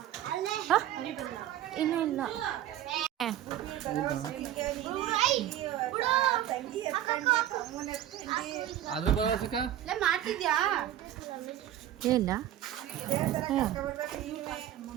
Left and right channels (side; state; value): left; quieter; 12.1 dB